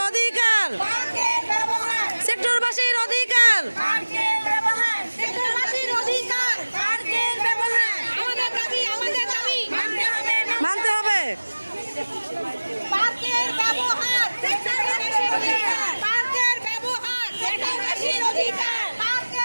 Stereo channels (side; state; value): both; inverted; correlation -1.00